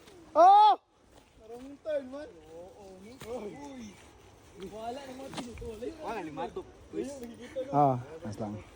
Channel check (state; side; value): identical; both; correlation 1.00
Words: Oh! Marong turn man. Oo. Uy. Wala naman tinutuloy. Wala, limatok. Ah, mas lang.